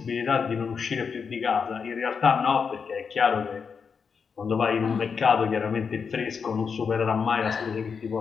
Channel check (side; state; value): right; quieter; 5.9 dB